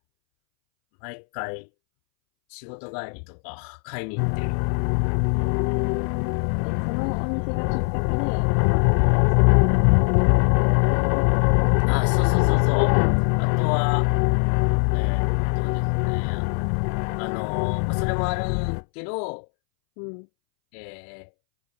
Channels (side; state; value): right; silent; 64 dB below the other